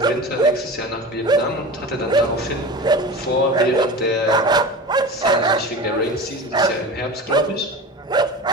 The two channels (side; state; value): both; normal; correlation 0.31